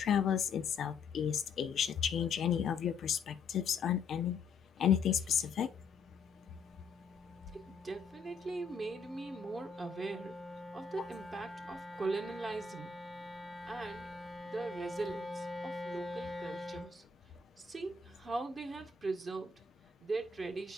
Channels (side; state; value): right; quieter; 4.7 dB